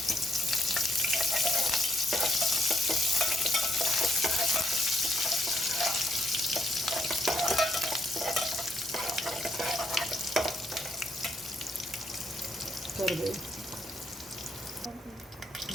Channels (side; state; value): both; normal; correlation 0.75